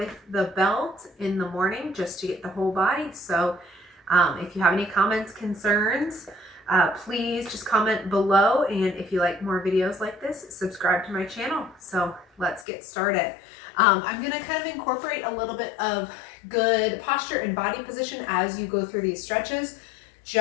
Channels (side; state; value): right; drops out; at 12.7 s